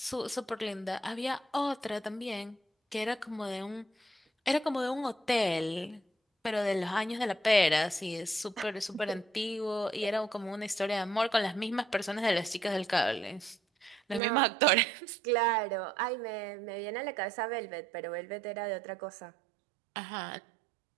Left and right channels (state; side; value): drops out; left; at 14.2 s